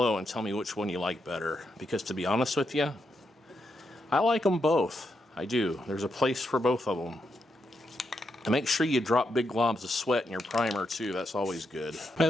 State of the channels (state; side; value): normal; both; correlation 0.82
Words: and tell me which one you like better, because to be honest with you, I like them both. I do. There's a place for both of them. And make sure you drop big globs of sweat in your primer too. That's always good. By